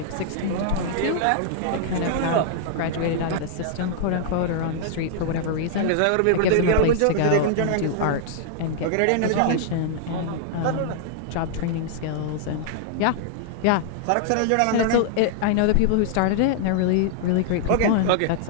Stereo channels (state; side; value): different; both; correlation -0.01